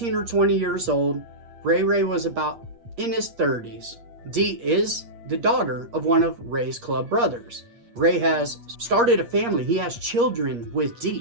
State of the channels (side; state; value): left; late; 8.5 ms